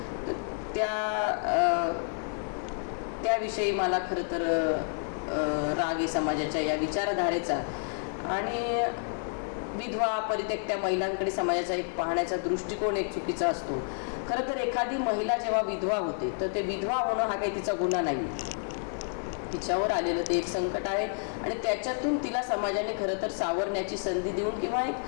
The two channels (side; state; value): right; silent; 58 dB below the other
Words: तर त्याविषयी मला खरं तर राग आहे समाजाच्या या विचारधारेचा. आणि विधवा परित्यक्त्या महिलांकडे समाजाचा एक पाहण्याचा दृष्टिकोन एक चुकीचा असतो. खरं तर एखादी महिला जेव्हा विधवा होते तर ते विधवा होणं हा काही तिचा गुन्हा नाही आहे, तिच्यावर आलेलं ते एक संकट आहे आणि त्याच्यातून तिला समाजाने खरं तर सावरण्याची संधी देऊन किंवा एक